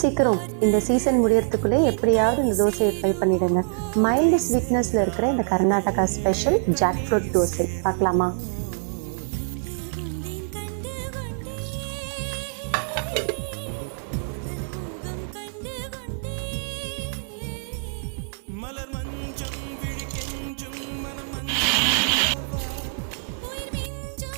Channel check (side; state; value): left; silent; 62 dB below the other